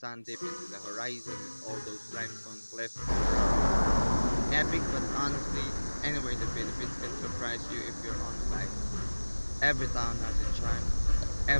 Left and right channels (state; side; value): inverted; both; correlation -1.00